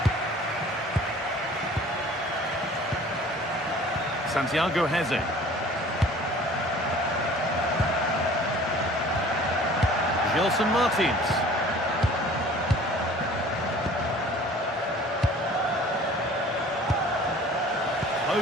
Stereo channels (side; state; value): both; normal; correlation 0.48